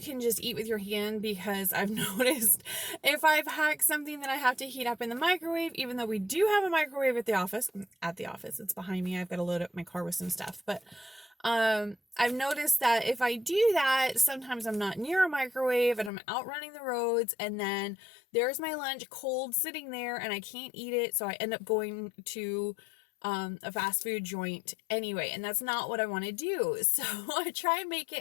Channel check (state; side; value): drops out; right; at 16.1 s